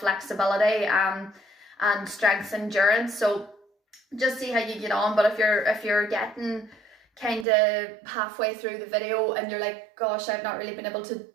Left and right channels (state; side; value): drops out; left; at 7.5 s